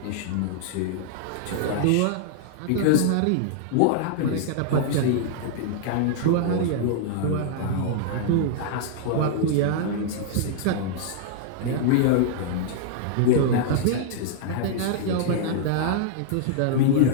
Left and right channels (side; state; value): both; different; correlation -0.01